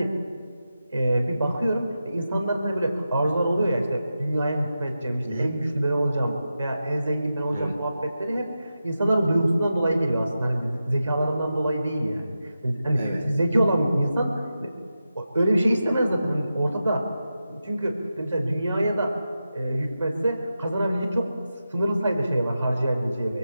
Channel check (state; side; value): inverted; both; correlation -0.90